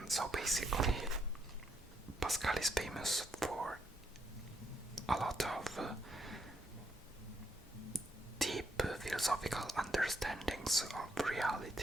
so basically Pascal is famous for a lot of deep philosophical understandings of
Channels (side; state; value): both; normal; correlation 0.76